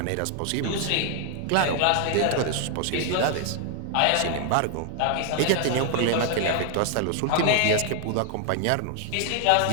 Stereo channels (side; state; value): both; different; correlation 0.00